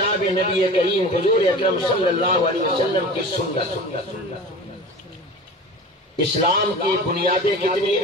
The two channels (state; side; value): normal; both; correlation 0.36